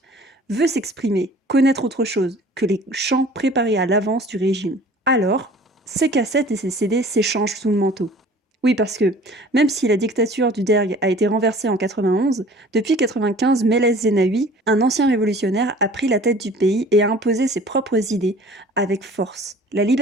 veut s'exprimer, connaître autre chose que les chants préparés à l'avance du régime. Alors, ses cassettes et ses CD s'échangent sous le manteau. Oui, parce que, même si la dictature du Derg a été renversée en 91, depuis 95, Meles Zenawi, un ancien révolutionnaire, a pris la tête du pays et a imposé ses propres idées avec force. La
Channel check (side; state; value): both; normal; correlation 0.47